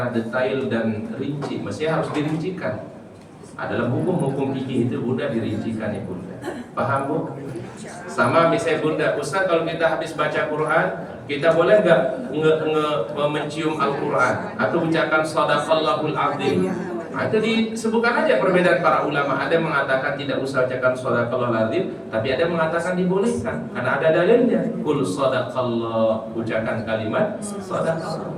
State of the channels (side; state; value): both; identical; correlation 1.00